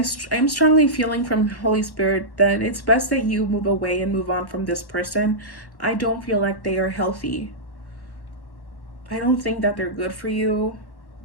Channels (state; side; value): late; right; 1.1 ms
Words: strongly feeling from Holy Spirit that it's best that you move away and move on from this person. I don't feel like they are healthy. I don't think that they're good for you.